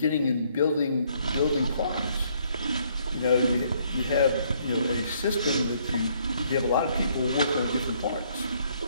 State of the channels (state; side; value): inverted; both; correlation -0.67